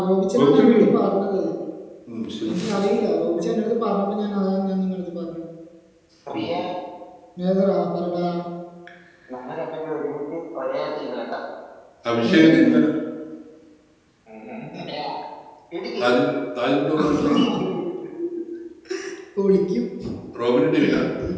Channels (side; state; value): both; identical; correlation 1.00